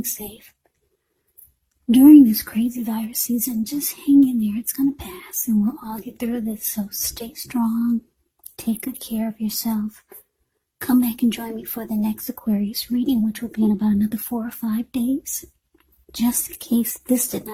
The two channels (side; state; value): both; identical; correlation 1.00